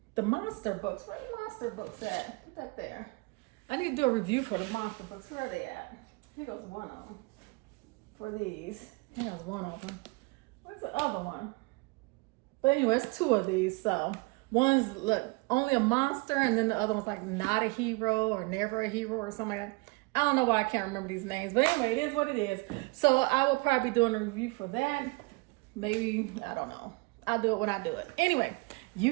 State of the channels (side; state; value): left; quieter; 26.5 dB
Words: the monster books. Where are the monster books at? Put that there. I need to do a review for the monster books. Where are they at? Here goes one of them for these. Here goes one of them. Where's the other one? But anyway, it's two of these. So one's look only a monster, and then the other one's like not a hero or never a hero or something like that. I don't know why I can't remember these names, but anyway, it is what it is. So I will probably be doing a review for that. Maybe, I don't know. I'll do it when I do it. Anyway,